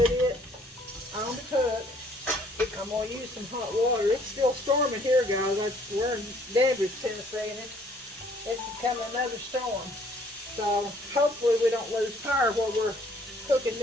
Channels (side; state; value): both; normal; correlation 0.61